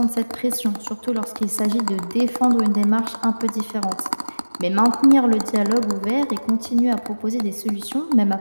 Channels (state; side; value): inverted; both; correlation -1.00